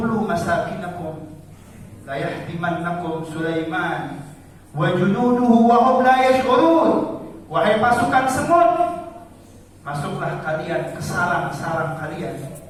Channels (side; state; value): both; identical; correlation 1.00